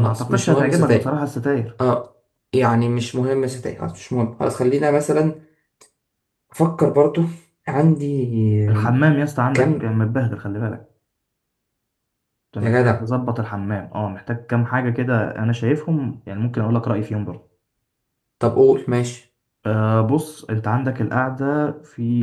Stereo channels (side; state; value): both; identical; correlation 1.00